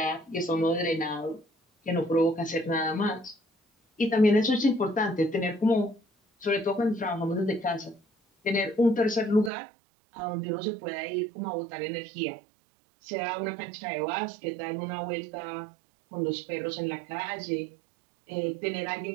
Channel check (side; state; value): left; drops out; at 9.5 s